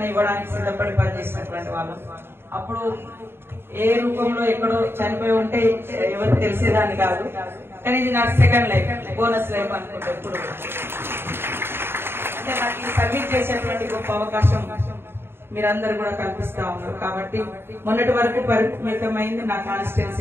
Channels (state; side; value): late; left; 0.11 ms